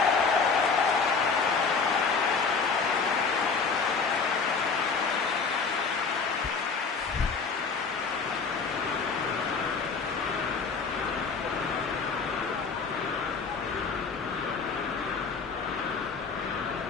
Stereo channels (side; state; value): right; quieter; 5.0 dB